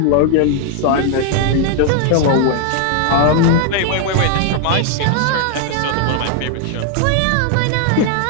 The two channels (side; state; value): both; different; correlation 0.00